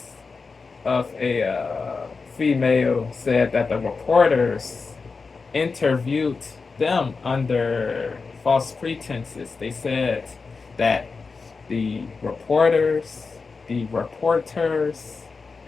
of a female said that the reporters interviewed them under false pretenses. They said that the reporters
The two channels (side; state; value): right; quieter; 4.5 dB